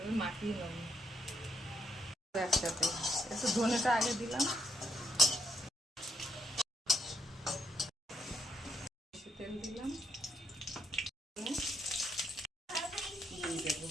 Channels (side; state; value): both; normal; correlation 0.75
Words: মাখিয়ে নেব একসাথে। একটু ধনেটা আগে দিলাম, তেল দিলাম, দিয়ে দেবো,